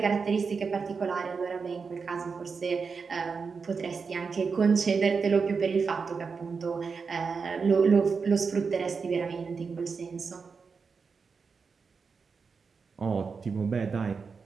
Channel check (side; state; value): left; quieter; 5.2 dB